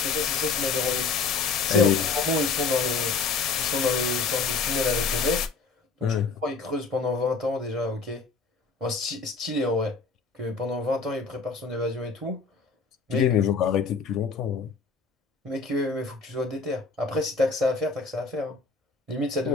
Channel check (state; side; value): quieter; right; 4.5 dB